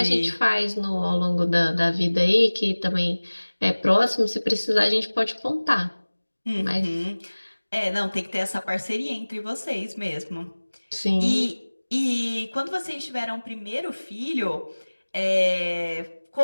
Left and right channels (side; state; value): both; inverted; correlation -1.00